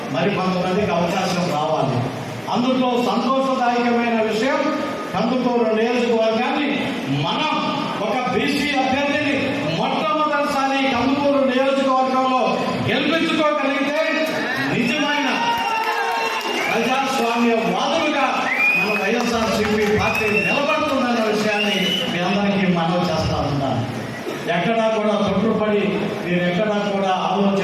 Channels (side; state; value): both; identical; correlation 1.00